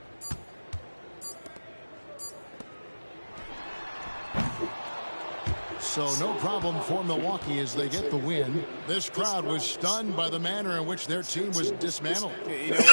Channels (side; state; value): both; inverted; correlation -1.00